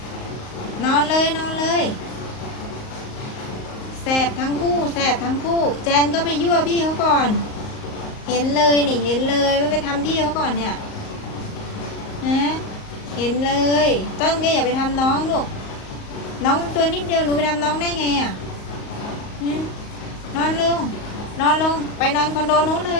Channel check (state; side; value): late; right; 38 ms